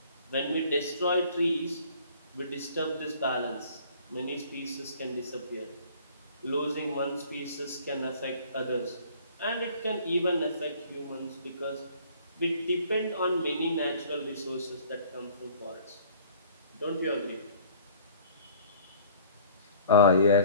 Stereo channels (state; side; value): inverted; both; correlation -0.52